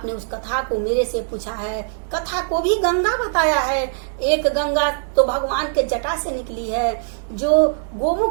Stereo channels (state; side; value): silent; left; digital silence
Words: उस कथा को मेरे से पूछा है। कथा को भी गंगा बताया है। एक गंगा तो भगवान के जटा से निकली है, जो